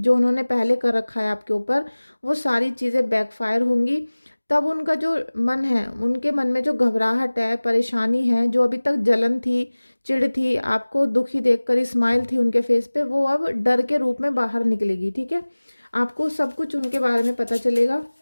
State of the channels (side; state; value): both; inverted; correlation -1.00